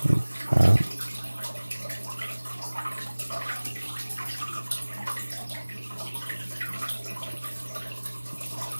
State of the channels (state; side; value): inverted; both; correlation -1.00